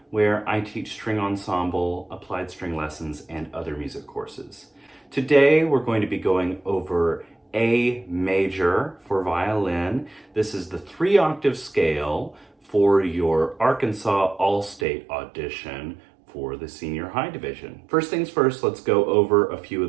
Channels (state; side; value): drops out; left; at 14.9 s